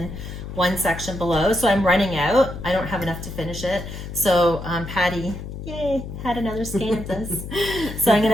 one section below. So I'm running out. I don't have enough to finish it. So Patty, yay, had another skein of this. So I'm going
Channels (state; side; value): noise; left; hum, 9 dB below the sound